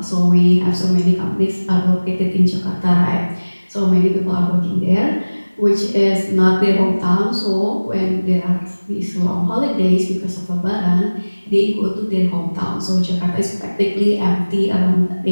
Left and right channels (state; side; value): inverted; both; correlation -1.00